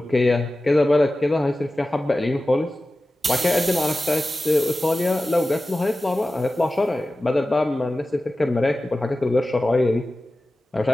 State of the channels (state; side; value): normal; both; correlation 0.95